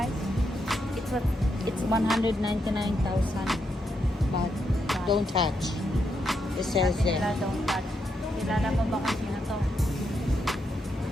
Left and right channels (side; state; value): both; normal; correlation 0.81